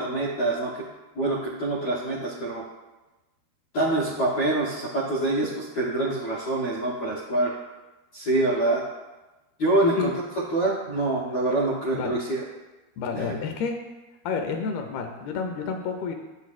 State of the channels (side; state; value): right; late; 12 ms